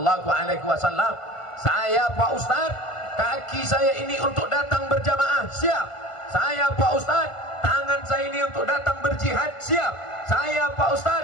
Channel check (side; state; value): right; late; 1.5 ms